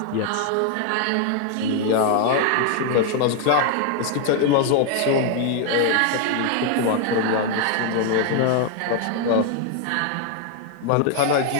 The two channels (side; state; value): both; different; correlation 0.00